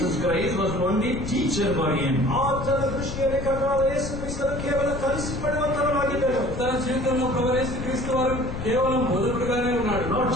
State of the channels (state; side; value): noise; left; rumble, 7 dB below the sound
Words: Christ was only teacher for him. ಆತನ ದೃಷ್ಟಿಯಲ್ಲಿ ಕರ್ತನಾದ ಯೇಸು ಕ್ರಿಸ್ತನು ಕೇವಲ ಕಲಿಸಿಕೊಡುವಂತವನಾಗಿದ್ದನು. తన జీవితంలో ప్రభువైన యేసుక్రీస్తు వారు కేవలం బోధకుడుగానే ఉన్నాడు. Lord